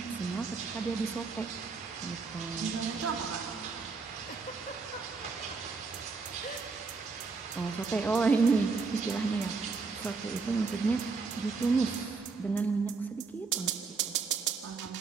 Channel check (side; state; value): left; quieter; 4.5 dB